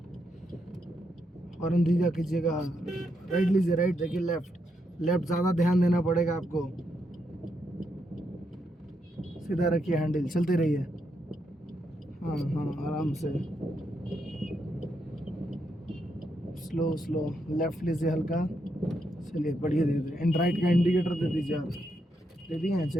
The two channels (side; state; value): both; normal; correlation 0.80